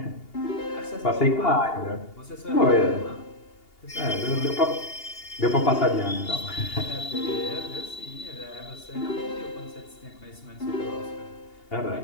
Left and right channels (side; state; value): right; late; 2.8 ms